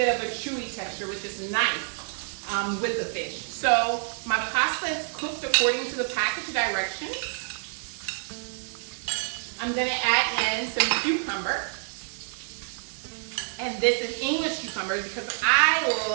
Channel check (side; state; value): left; silent; digital silence